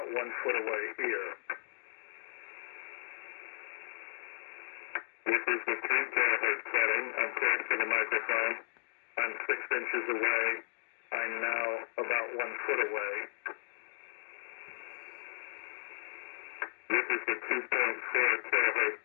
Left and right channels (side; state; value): right; silent; digital silence